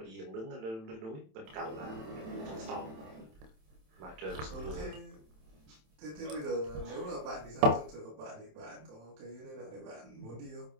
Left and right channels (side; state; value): left; late; 27 ms